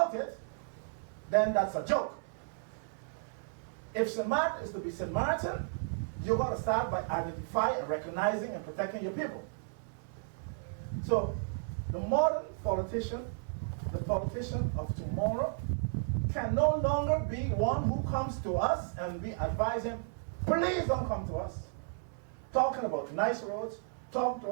it, then that's a joke. If St. Martin is to be St. Martin, you've got to start by identifying and recognizing and protecting your people. So the modern politician, the politician of tomorrow, can no longer be one who comes to us and we advise him, please don't come to us, talking about nice roads, talking to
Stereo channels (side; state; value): left; silent; 55 dB below the other